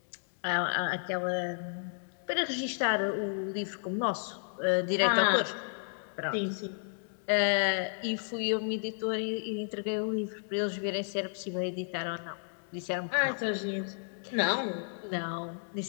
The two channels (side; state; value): right; silent; digital silence